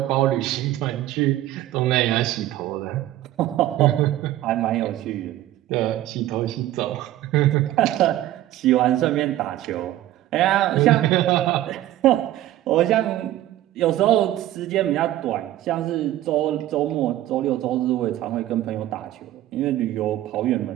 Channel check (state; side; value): quieter; left; 14.2 dB